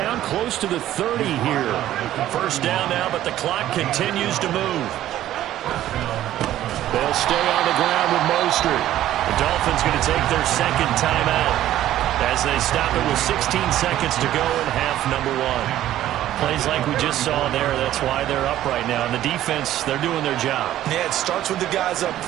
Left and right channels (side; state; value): left; quieter; 13.1 dB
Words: close to the 30 here. First down now, but the clock continues to move. They'll stay on the ground with Mostert. The Dolphins going to take their 2nd timeout as they stop it with 16 seconds to go in half number 1. Plays like we just saw there. That's why they're up right now. And the defense, they're doing their job. Yeah, it starts with the guys up